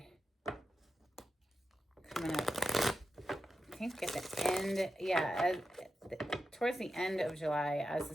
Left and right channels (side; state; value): both; normal; correlation 0.90